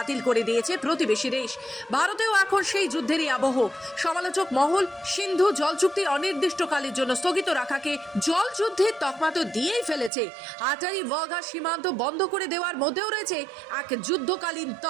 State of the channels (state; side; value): drops out; left; at 10.1 s